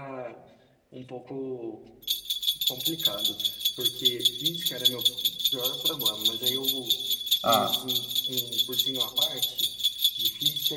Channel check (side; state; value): both; identical; correlation 1.00